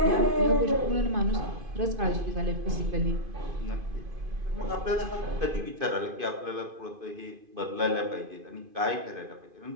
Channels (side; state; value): left; late; 2.5 ms